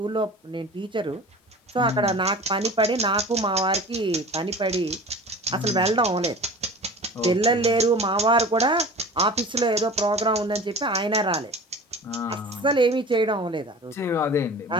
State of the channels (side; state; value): both; normal; correlation 0.39